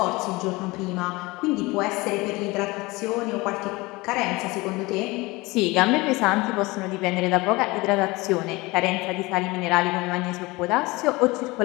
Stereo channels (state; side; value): quieter; right; 22.7 dB